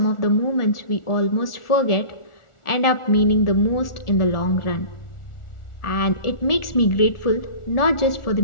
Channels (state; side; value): late; right; 1.4 ms